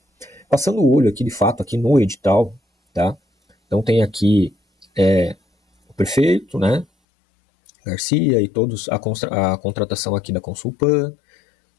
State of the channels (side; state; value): right; drops out; at 6.9 s